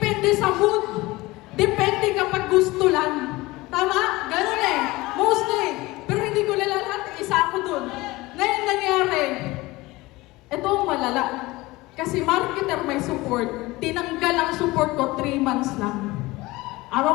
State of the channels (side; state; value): right; quieter; 20.6 dB